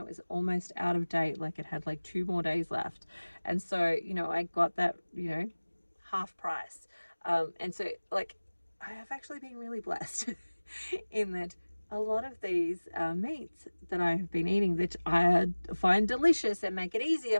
it was almost out of date. Like it had like 2 more days left. And so, you know, I got that, you know, half price. And so like, I have actually been really blessed in that a lot of these meats that I have been eating that I find delicious and make it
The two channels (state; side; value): inverted; both; correlation -1.00